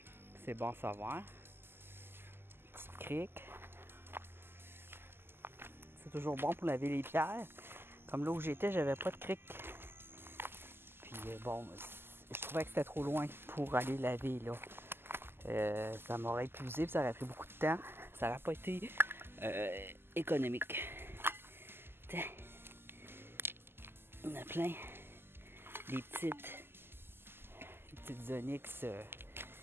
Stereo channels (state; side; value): late; left; 0.11 ms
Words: c'est bon à savoir. Petite crique. C'est toujours bon pour laver les pierres. Comme là où j'étais, j'avais pas de crique. Puis bon, je trouvais que c'était trop loin pour aller laver là. Ça m'aurait épuisé, puis ça aurait pris beaucoup de temps. Ça n'aurait pas été économique. Tiens. On a plein. Des petites onyx